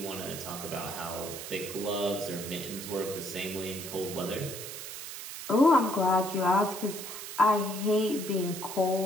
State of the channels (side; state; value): right; noise; hiss, 9 dB below the sound